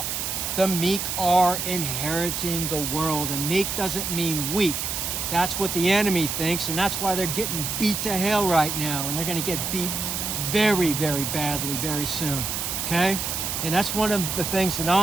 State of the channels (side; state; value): right; noise; hiss, 2 dB below the sound